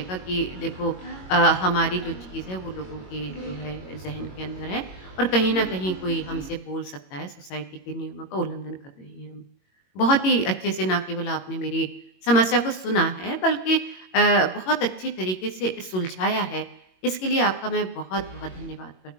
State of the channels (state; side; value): late; right; 22 ms